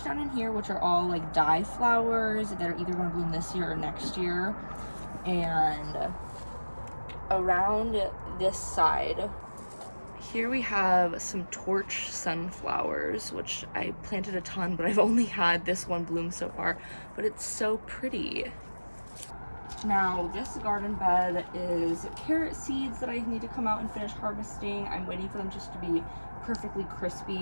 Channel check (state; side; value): inverted; both; correlation -1.00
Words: down in here, which are all like dye flowers that are either going to bloom this year or next year. And around this side, here we have some torch sunflowers, which I planted a ton, but I've only had this one bloom so far, but it's so pretty. Now, this garden bed is carrot seeds that I need to come out and finish harvesting. I'm waiting for them just to be perfectly